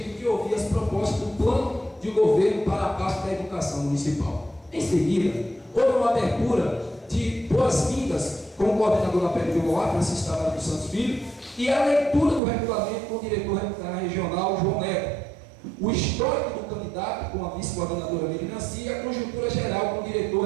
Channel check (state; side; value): drops out; left; at 12.4 s